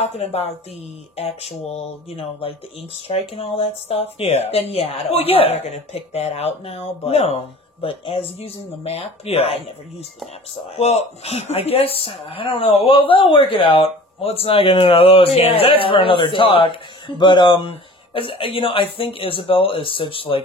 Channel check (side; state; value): both; normal; correlation 0.44